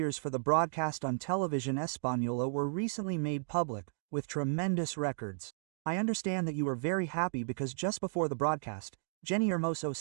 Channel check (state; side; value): silent; left; digital silence